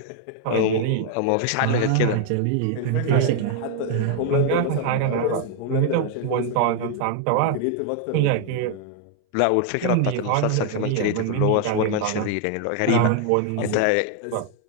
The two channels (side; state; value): both; different; correlation 0.00